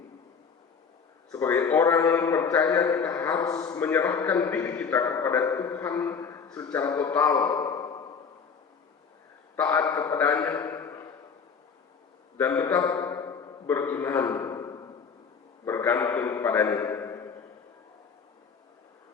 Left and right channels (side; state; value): right; quieter; 5.9 dB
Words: Sebagai orang percaya, kita harus menyerahkan diri kita kepada Tuhan secara total, taat kepadanya, dan tetap beriman, bergantung kepadanya.